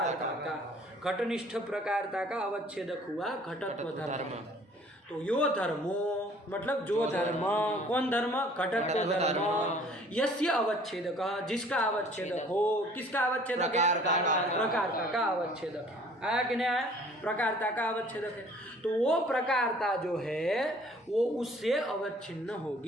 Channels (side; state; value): both; normal; correlation 0.54